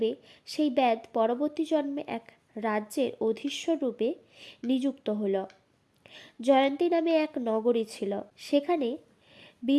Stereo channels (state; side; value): identical; both; correlation 1.00